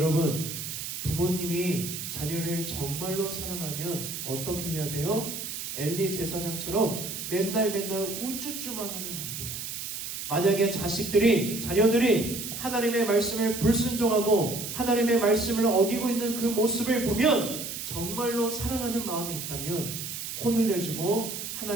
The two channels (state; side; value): noise; right; hiss, 6 dB below the sound